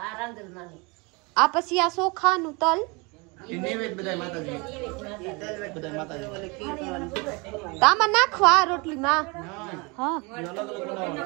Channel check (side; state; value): left; quieter; 28.2 dB